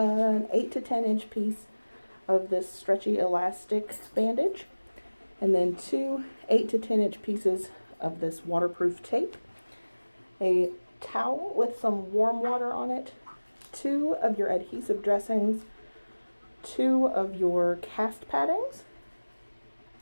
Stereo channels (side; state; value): both; inverted; correlation -1.00